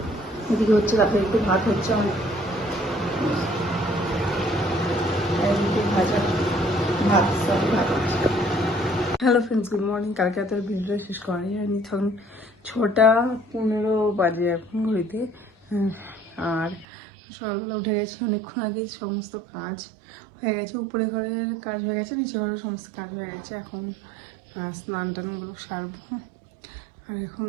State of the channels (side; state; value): left; drops out; at 16.9 s